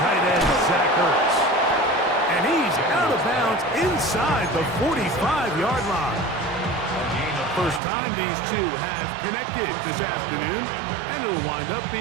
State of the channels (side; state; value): left; drops out; at 7.8 s